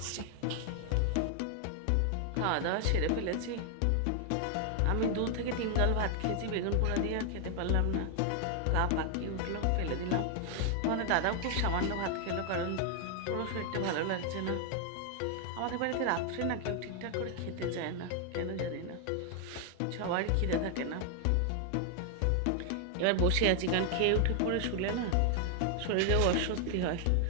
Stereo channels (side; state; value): both; different; correlation 0.00